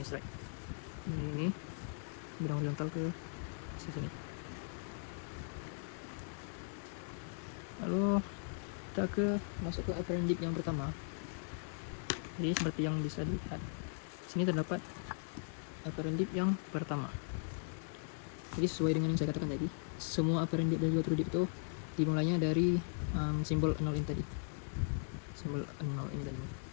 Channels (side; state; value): right; silent; digital silence